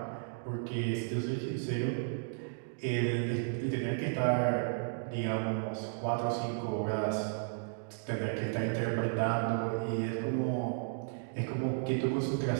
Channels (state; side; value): silent; left; digital silence